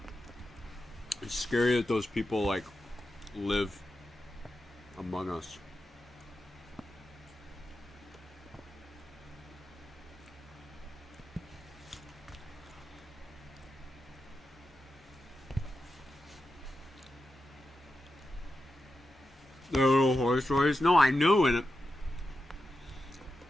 It's scary that those people, like, live among us. The little horror stories? No, I know in it.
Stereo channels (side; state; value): both; normal; correlation 0.90